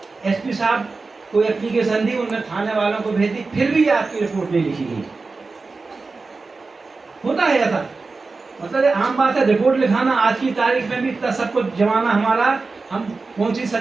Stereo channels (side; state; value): left; quieter; 4.0 dB